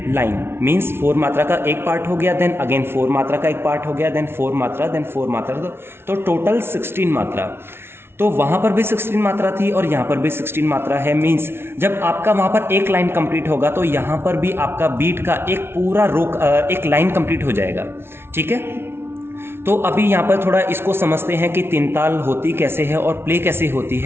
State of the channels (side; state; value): left; late; 0.12 ms